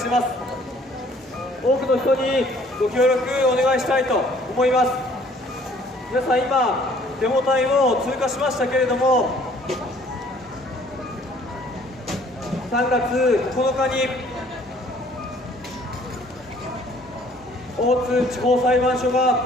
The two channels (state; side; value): normal; both; correlation 0.58